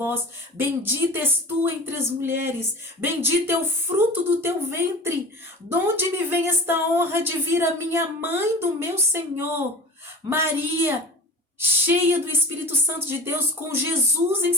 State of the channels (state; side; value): normal; both; correlation 0.36